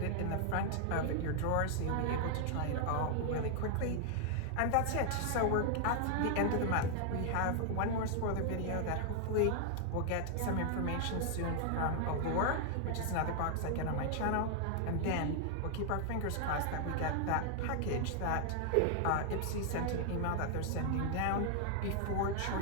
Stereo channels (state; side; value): different; both; correlation 0.00